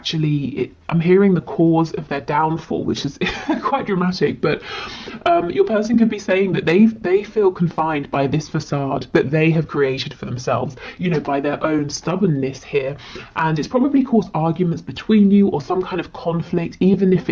I'm hearing the cause of their downfall, which is quite dramatic, but your person could be saying that they feel confined by this facade that they have created for themselves, you know, by their own stubbornness here, and it's probably caused arguments between you or some kind of conflict, even if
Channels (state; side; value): identical; both; correlation 1.00